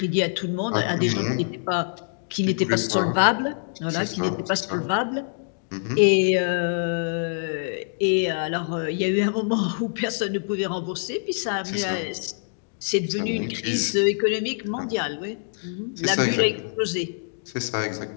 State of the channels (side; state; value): right; silent; digital silence